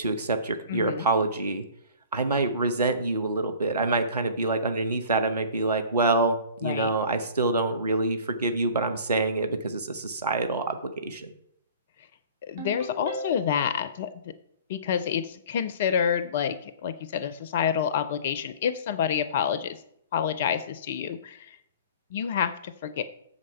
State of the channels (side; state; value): both; inverted; correlation -0.45